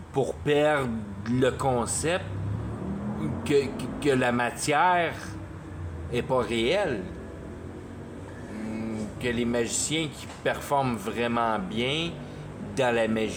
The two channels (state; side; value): identical; both; correlation 1.00